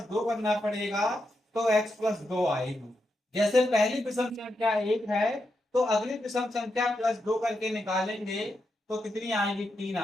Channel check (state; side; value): normal; both; correlation 0.85